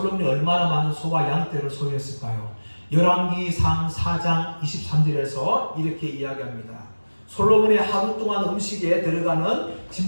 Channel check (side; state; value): both; inverted; correlation -1.00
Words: 얼마나 많은 소와 양떼를 소유했을까요? 열왕기상 4장 23절에서 이렇게 이야기합니다. 솔로몬의 하루 동안 음식에 들어가는